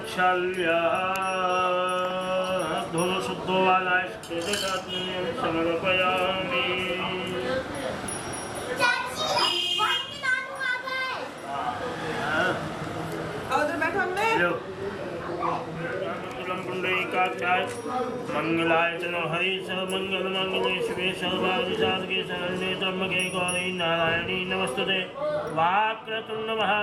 धो शुद्धो वालाय समर्पयामि। मंगलाय चलो हरि सर्वमंगल मंगले शिवे सर्वादि साधके शरण्ये त्र्यंबके गौरी नारायणी नमस्तुते। वाक्रतुंड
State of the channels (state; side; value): identical; both; correlation 1.00